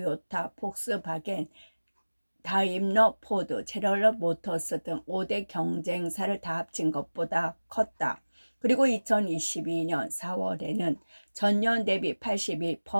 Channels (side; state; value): both; inverted; correlation -1.00